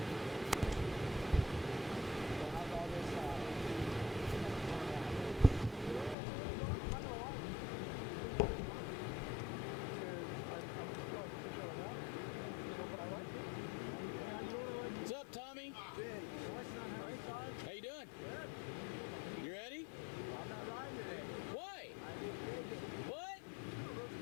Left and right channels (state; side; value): drops out; right; at 6.2 s